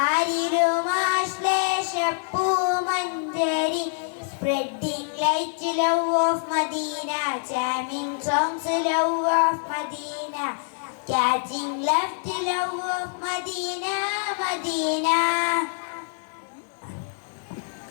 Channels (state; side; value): silent; right; 61 dB below the other